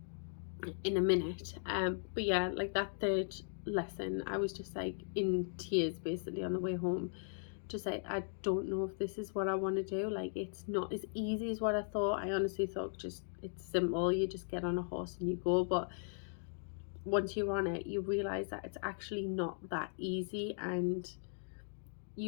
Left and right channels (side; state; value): right; silent; digital silence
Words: in a minute. But yeah, like that third lesson, I was just like in tears basically on the way home. Just like, I don't know if this is what I want to do. Like, it's not as easy as what I thought. I honestly thought just it's simple. You just get on a horse and you go. But once you're on it, you realize that it's actually not that easy, and